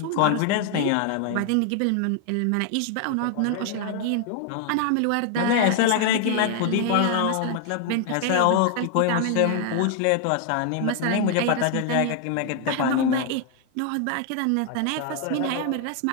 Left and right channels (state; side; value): different; both; correlation 0.00